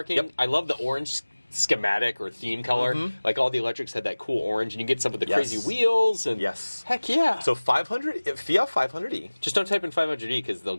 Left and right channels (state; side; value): inverted; both; correlation -1.00